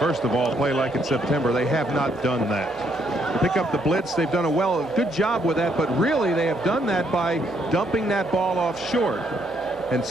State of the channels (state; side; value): normal; both; correlation 0.72